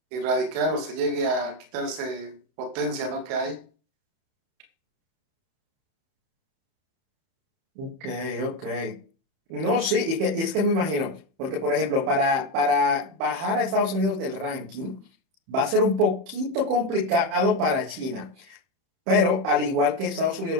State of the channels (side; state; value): left; late; 31 ms